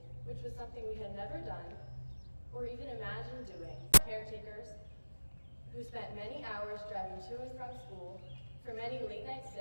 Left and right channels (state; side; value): inverted; both; correlation -1.00